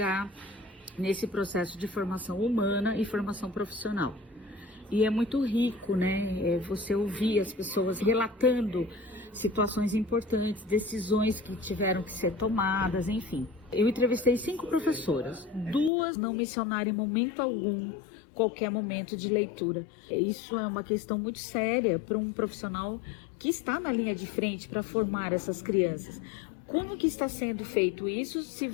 nesse processo de formação humana e formação profissional. E é muito rico, né? Você ouvir as pessoas relatando situações importantes, decisões que tiveram que ser tomadas, enfim. Eu entrevistei 5 professoras, 2 não mencionaram em momento algum qualquer momento de leitura. Isso é uma questão muito séria para um profissional que está na linha de frente para formar essas crianças. Como que está sendo feito isso se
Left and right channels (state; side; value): drops out; right; at 15.9 s